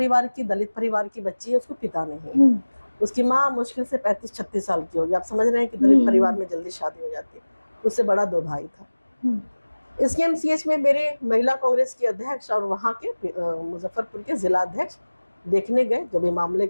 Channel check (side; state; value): both; inverted; correlation -1.00